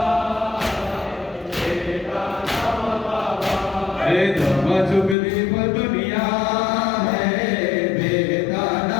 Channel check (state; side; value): drops out; right; at 5.2 s